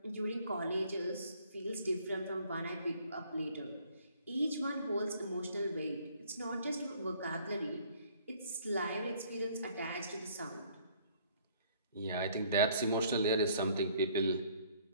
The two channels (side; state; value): both; inverted; correlation -0.59